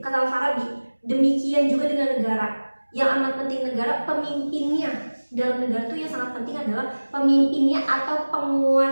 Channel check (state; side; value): inverted; both; correlation -1.00